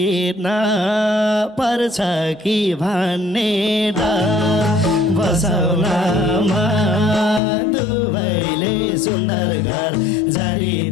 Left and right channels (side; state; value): right; drops out; at 7.4 s